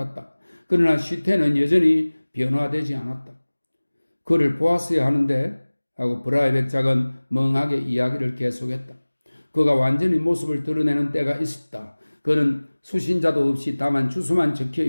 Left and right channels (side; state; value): both; inverted; correlation -1.00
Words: 그러나 쉬텐은 여전히 변화되지 않았다. 그를 보았어야 하는데 하고 브라의 백작은 멍하게 이야기를 계속했다. 그가 완전히 모습을 드러내는 때가 있었다. 그는 수신자도 없이 다만 주소만 적혀